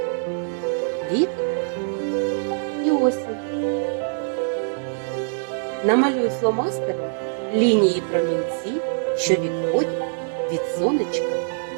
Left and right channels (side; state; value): left; silent; 63 dB below the other